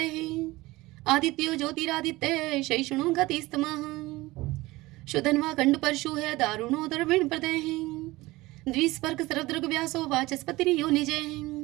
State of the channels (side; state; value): left; quieter; 20.0 dB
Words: आदित्यो ज्योतिरादित्य शैषणो गतिस्तमः शुधन्वा खंड परशु है दारुणो दर्विण प्रदय द्विस्पर्क सर्वदृग व्यासो वाचस्पति यो निजय